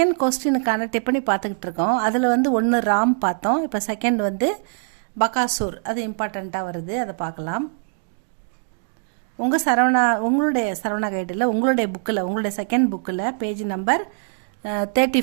கொஸ்டினுக்கான டிப்பனி பார்த்துக்கிட்டு இருக்கோம். அதில் வந்து ஒன்று ராம் பார்த்தோம். இப்போ செகண்ட் வந்து பகாசூர், அது இம்பார்ட்டண்ட்டாக வருது, அதை பார்க்கலாம். உங்களுடைய சரவணா கைடில் உங்களுடைய புக்கில் உங்களுடைய செகண்ட் புக்கில் பேஜ் நம்பர்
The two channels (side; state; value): left; silent; digital silence